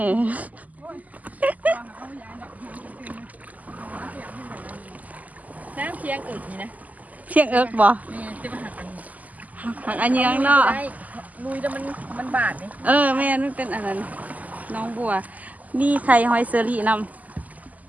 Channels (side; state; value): left; late; 0.077 ms